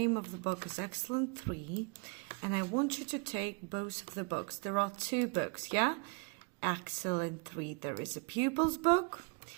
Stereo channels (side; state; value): left; quieter; 31.6 dB